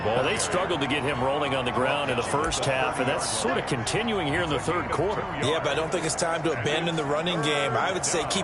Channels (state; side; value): identical; both; correlation 1.00